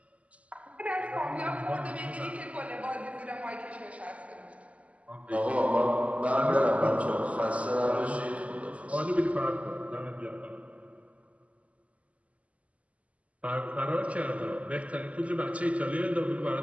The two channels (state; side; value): late; left; 0.067 ms